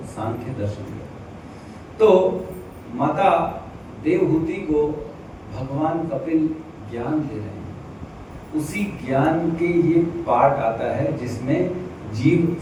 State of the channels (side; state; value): both; identical; correlation 1.00